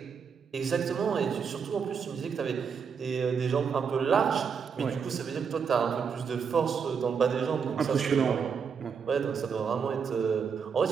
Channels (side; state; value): left; quieter; 6.3 dB